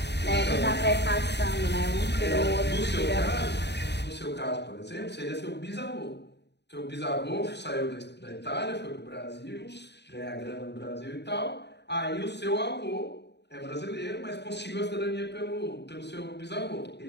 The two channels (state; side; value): late; right; 0.50 ms